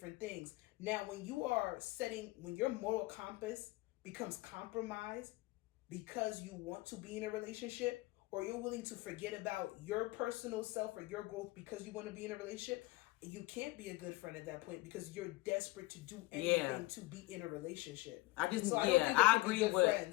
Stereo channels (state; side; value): quieter; right; 21.0 dB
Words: things. Now, when your moral compass becomes compromised because you want to be in a relationship, or you're willing to forget about your personal self or your growth because you want to be in a relationship, you can't be a good friend at that point because you're desperate to do anything to be in a relationship. I agree with